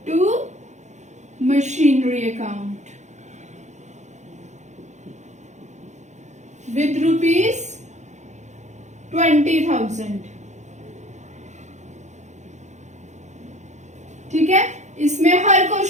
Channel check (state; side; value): late; left; 0.34 ms